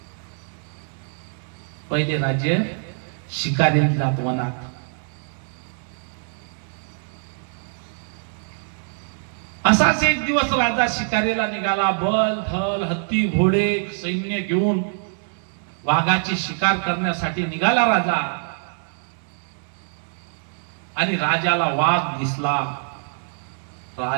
पहिले राजे शिकारीला जात वनात. असाच एक दिवस राजा शिकारीला निघाला. बल धल हत्ती घोडे सैन्य घेऊन वाघाची शिकार करण्यासाठी निघाला राजा. आणि राजाला वाघ दिसला.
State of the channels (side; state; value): left; silent; digital silence